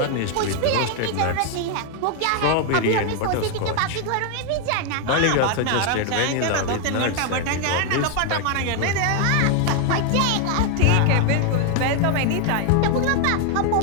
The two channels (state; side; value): different; both; correlation 0.00